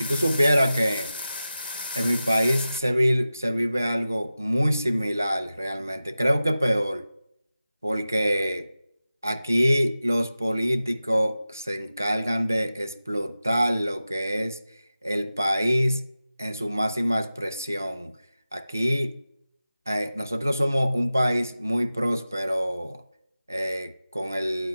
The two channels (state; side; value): inverted; both; correlation -0.94